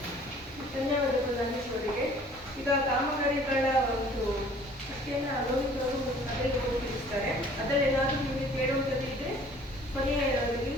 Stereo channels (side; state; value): both; normal; correlation 0.53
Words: ಧನ್ಯವಾದಗಳು ಧನೇಶ್ವರಿಗೆ. ಈಗ ಕಾಮಗಾರಿಗಳ ಒಂದು ಅಷ್ಟೇನ ಅನುಭವಿಸಲು ಸಭೆಗೆ ಹೋಗಿರ್ತಾರೆ, ಅದರಲ್ಲಿ ಏನಾದರೂ ನಿಮಗೆ ಕೇಳುವಂಥದ್ದು ಇದ್ರೆ ಕೊನೆಯ